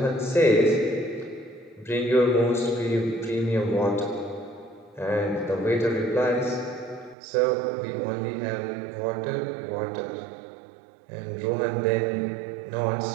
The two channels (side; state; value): left; drops out; at 7.2 s